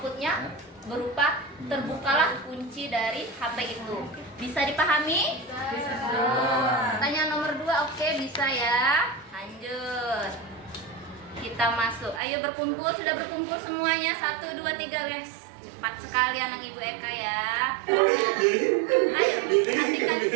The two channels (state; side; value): drops out; left; at 12.2 s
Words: berupa terbukalah kunci dari HP itu. Bisa dipahami? Bisa. Pertanyaan nomor 2, oke, bisa ya. Lanjut. Kita masuk. Ayo berkumpul, sudah berkumpul semuanya. 1, 2, 3, guys. 4 sekali anak Ibu Eka ya. Ayo, perhatikan